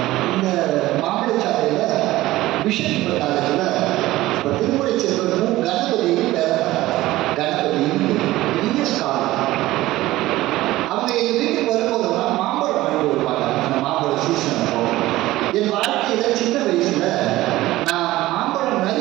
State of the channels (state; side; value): quieter; left; 17.0 dB